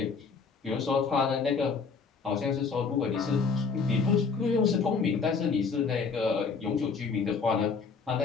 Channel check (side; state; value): right; quieter; 5.2 dB